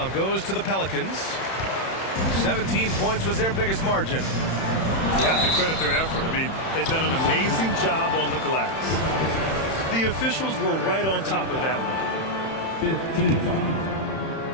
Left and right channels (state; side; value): late; right; 31 ms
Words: goes to the Pelicans. 17 points was their biggest margin. You have to credit their effort. I mean, they've done an amazing job on the glass. The officials were right on top of that one. 15 foul.